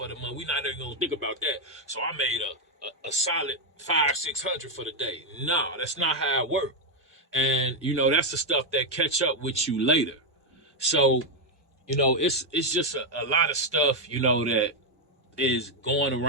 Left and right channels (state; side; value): normal; both; correlation 0.02